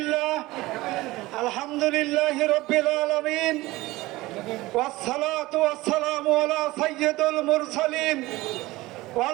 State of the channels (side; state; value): left; quieter; 19.4 dB